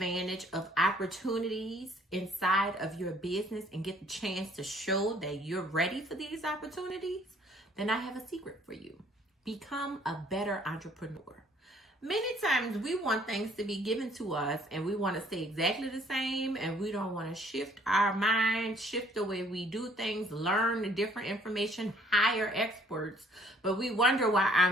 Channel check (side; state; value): both; normal; correlation 0.60